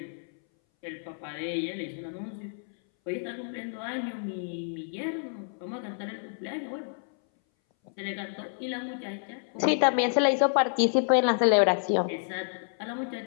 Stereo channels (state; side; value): silent; right; 58 dB below the other